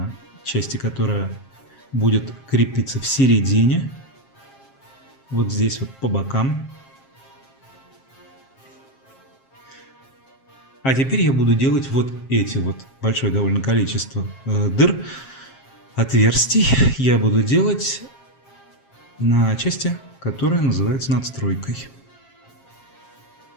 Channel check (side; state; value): right; late; 7.5 ms